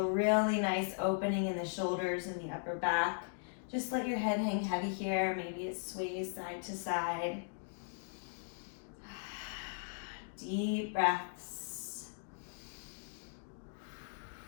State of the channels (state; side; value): silent; right; digital silence